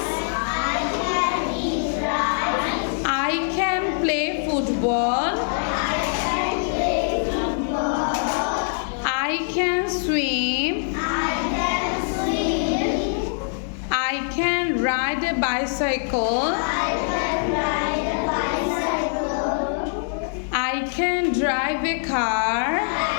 I can play football. I can swim. I can ride a bicycle. I can drive a car.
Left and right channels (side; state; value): right; silent; digital silence